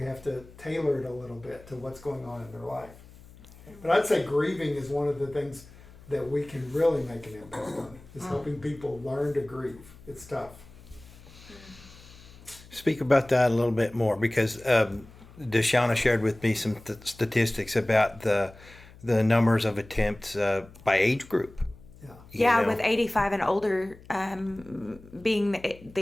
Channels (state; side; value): noise; left; hum, 21 dB below the sound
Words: have to tailor it a little bit to what's going on in their life. But I'd say grieving is one of the things that we can really make an impact on, is helping people learn to grieve. It's tough. Speak about that a little bit more, because Deshauna shared with me some statistics about the numbers of attempts by age group. Yeah, with 85 and older being the